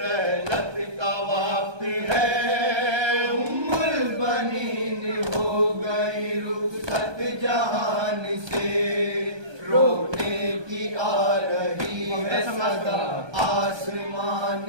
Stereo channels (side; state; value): left; late; 1.2 ms